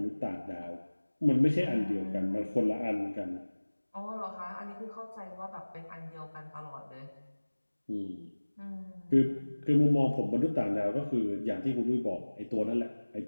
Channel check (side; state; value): both; inverted; correlation -1.00